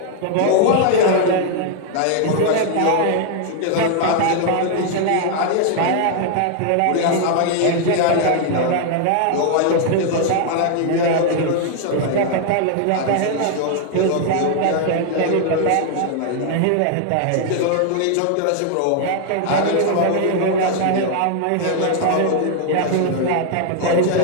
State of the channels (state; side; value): different; both; correlation 0.00